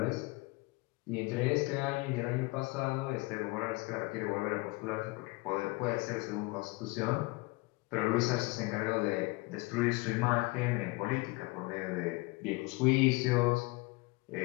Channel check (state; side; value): quieter; right; 24.2 dB